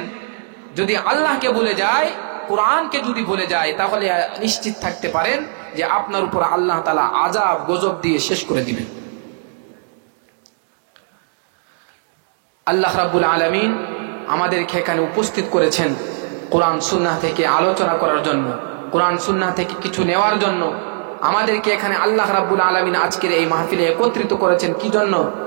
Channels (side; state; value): left; silent; digital silence